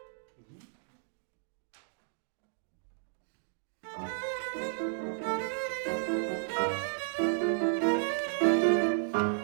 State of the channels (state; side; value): silent; left; digital silence